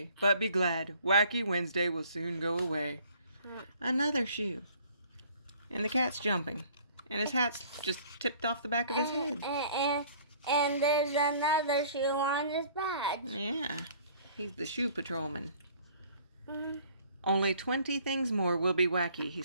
But be glad. Wacky Wednesday will soon go away. Another shoe. And the cat's jumping. And his hat's just tipped off the back of his head. And there's another shoe on his badge. Yeah. He's the shoe patrolman. Only 20 things more will be wacky, he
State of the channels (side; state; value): both; inverted; correlation -0.55